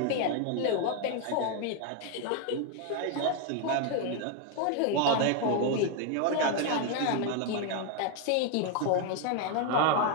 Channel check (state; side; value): different; both; correlation 0.00